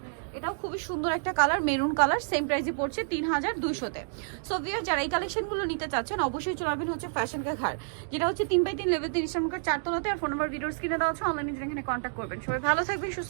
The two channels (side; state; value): left; silent; digital silence